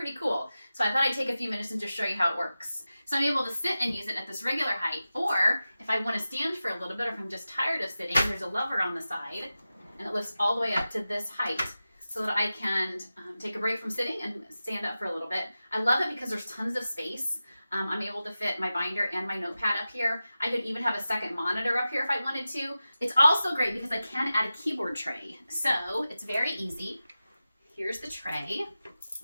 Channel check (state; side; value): inverted; both; correlation -0.94